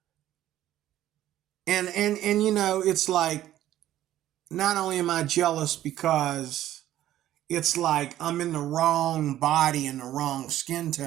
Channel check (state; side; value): quieter; left; 13.1 dB